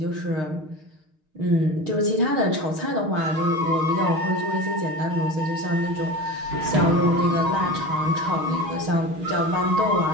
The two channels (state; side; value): late; left; 6.5 ms